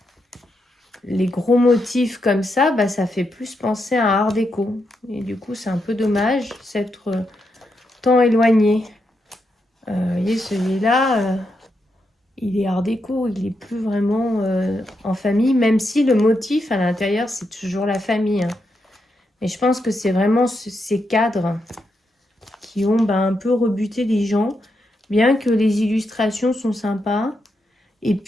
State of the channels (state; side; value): normal; both; correlation 0.83